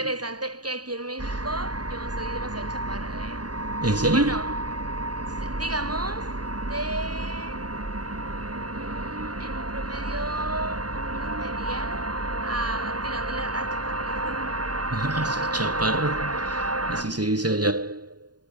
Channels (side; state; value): left; late; 0.70 ms